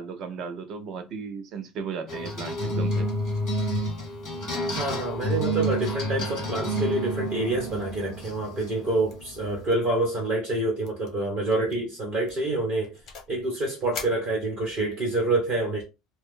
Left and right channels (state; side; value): normal; both; correlation 0.33